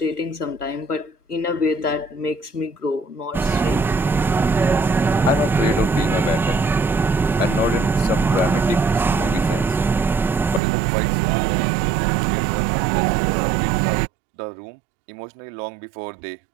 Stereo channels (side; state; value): left; drops out; at 10.6 s